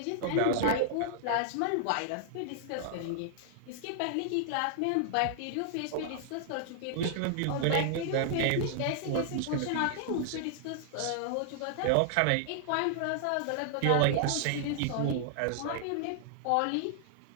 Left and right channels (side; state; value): both; different; correlation -0.01